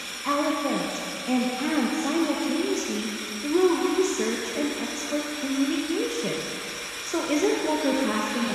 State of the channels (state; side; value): identical; both; correlation 1.00